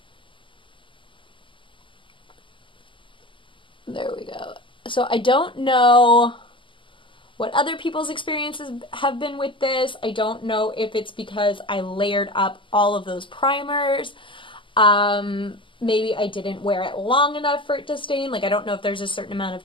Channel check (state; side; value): late; right; 0.25 ms